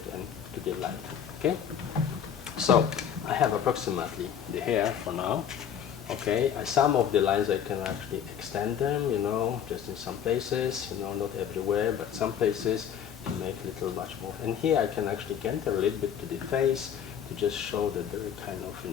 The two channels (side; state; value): right; quieter; 8.6 dB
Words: and to the light, okay? So I have approximately the hair for now. Okay, some of the lines I can actually extend them, just in some places, not everywhere, but some places to make a little much more. And here I can actually enter a little bit to the face to just show that there is kind